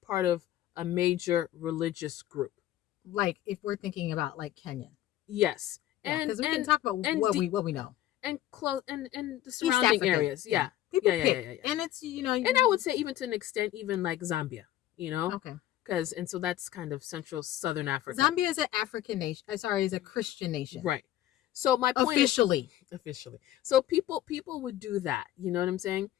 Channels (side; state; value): right; quieter; 13.3 dB